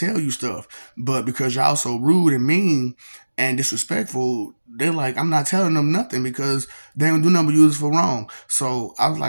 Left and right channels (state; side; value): inverted; both; correlation -1.00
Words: you stuff, but because y'all so rude and mean and disrespectful, they're like, I'm not telling them nothing because they don't do nothing but use it for wrong. So I was